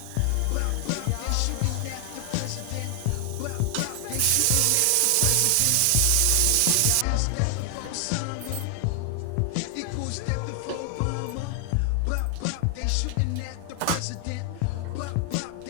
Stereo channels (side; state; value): both; different; correlation 0.00